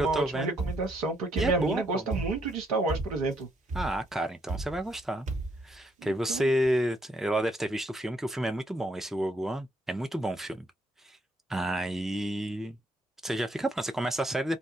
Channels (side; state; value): both; normal; correlation 0.73